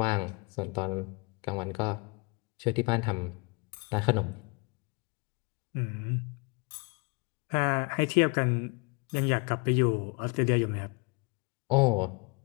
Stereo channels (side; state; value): right; quieter; 29.7 dB